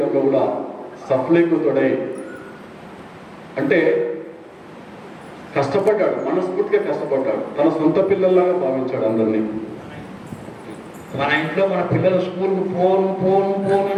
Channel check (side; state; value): both; identical; correlation 1.00